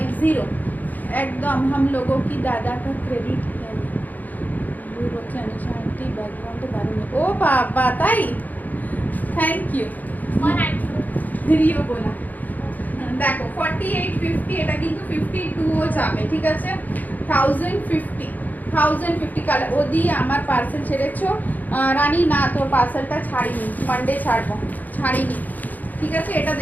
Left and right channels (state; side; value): late; right; 0.082 ms